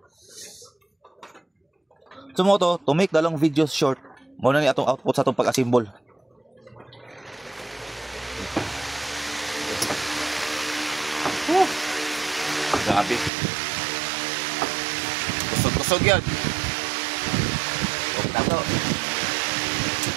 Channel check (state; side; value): drops out; left; at 13.3 s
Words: Sumoto to make the long videos short. Mao na ni atong output sa atong pag-assemble. Grabe. Kusog-kusog yan. Huwag na to.